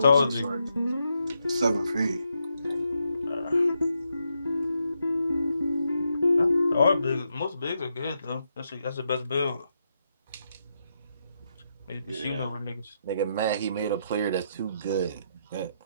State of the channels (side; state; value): both; inverted; correlation -0.81